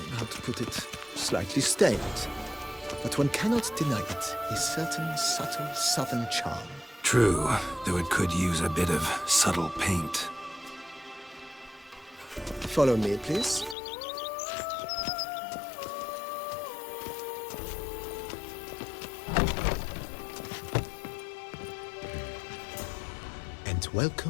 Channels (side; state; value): right; drops out; at 13.8 s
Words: how to put it, slightly stained. But one cannot deny it, a certain subtle southern charm. True, though it could use a bit of subtle paint. Follow me, please. And